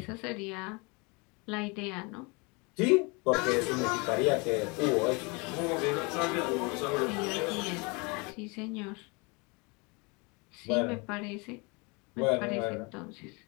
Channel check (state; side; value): quieter; right; 29.1 dB